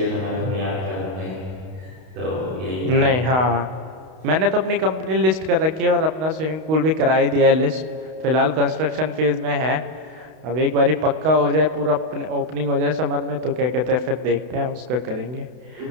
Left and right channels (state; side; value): late; left; 32 ms